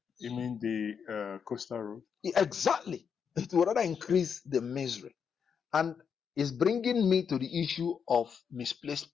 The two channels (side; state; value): right; quieter; 6.9 dB